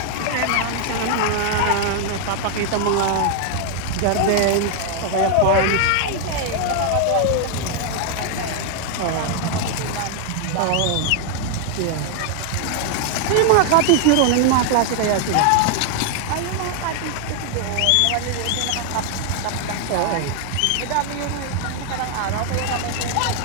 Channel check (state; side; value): different; both; correlation 0.00